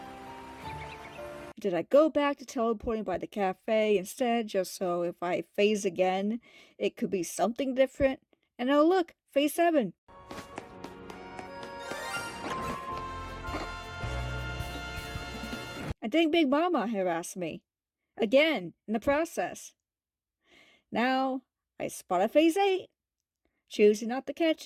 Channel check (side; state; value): both; identical; correlation 1.00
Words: Did I go back to teleporting by the cafe instead, just so if I phase again, it could be something different? And oh look, Phase 7! I think Big Mama harassed me. Again, in the process. Now, I spot a Phase 8, choosing not to